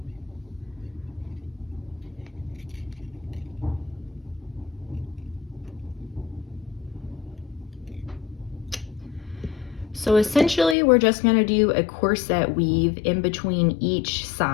So essentially, we're just gonna do a corset weave in between each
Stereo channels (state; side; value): drops out; right; at 10.8 s